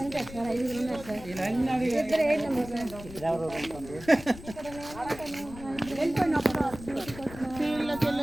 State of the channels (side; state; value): left; noise; rumble, 15 dB below the sound